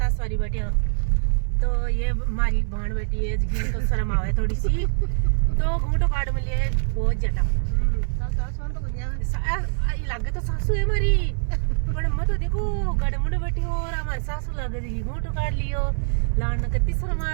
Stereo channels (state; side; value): silent; left; 61 dB below the other